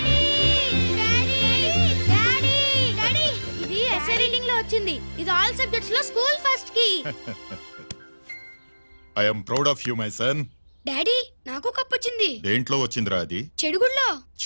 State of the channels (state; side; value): inverted; both; correlation -1.00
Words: ఇది ఆల్ సబ్జెక్ట్స్ లో స్కూల్ ఫస్ట్ కి. I am proud of you, my son. Daddy నాకు cup వచ్చింది. దేంట్లో వచ్చిందిరా అది? చెడుగుళ్ళో.